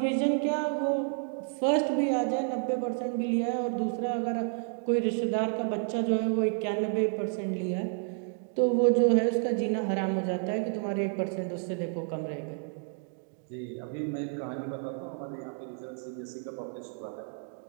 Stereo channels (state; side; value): silent; left; 58 dB below the other